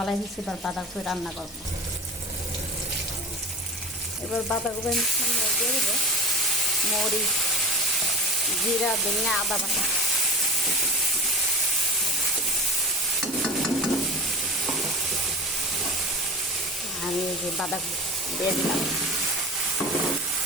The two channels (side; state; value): both; normal; correlation 0.30